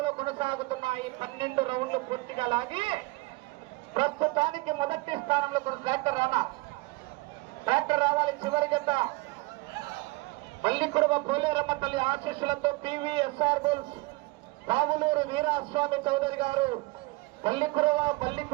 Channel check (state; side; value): quieter; left; 24.2 dB